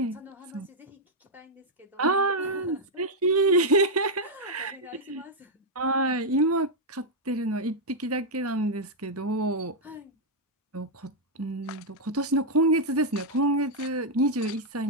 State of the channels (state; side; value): normal; both; correlation -0.02